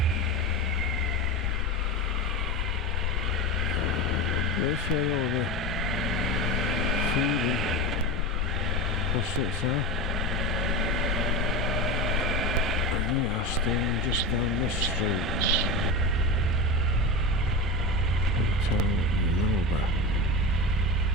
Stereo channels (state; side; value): normal; both; correlation 0.23